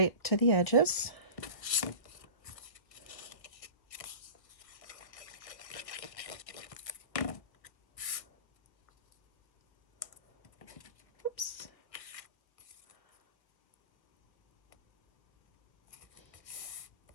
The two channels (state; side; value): late; right; 1.5 ms